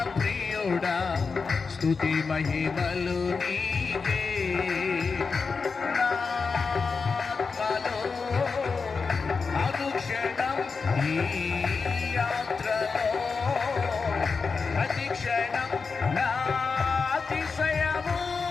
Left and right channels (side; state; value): right; quieter; 4.9 dB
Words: ప్రియుడా, స్తుతి మహిమలు నీకే. నా ఆత్మలో అనుక్షణం ఈ యాత్రలో ప్రతిక్షణం నా అతిశయము